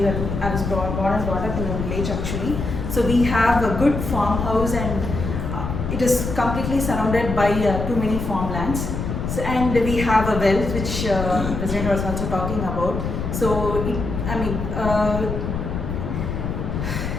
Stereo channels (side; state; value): left; noise; rumble, 4 dB below the sound